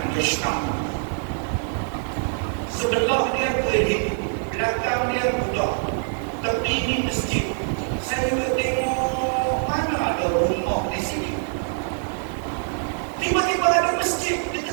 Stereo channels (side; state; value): left; silent; 56 dB below the other